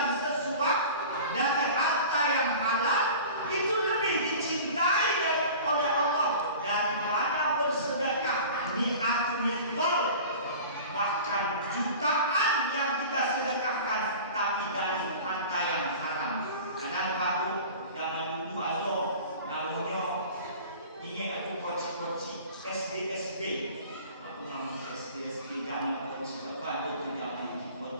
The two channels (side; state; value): both; inverted; correlation -0.39